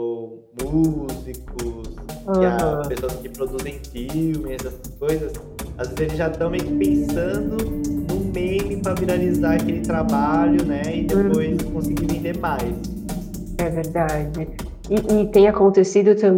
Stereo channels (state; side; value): identical; both; correlation 1.00